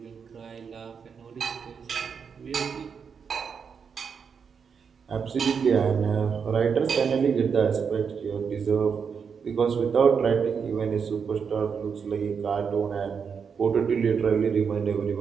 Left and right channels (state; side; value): quieter; left; 6.3 dB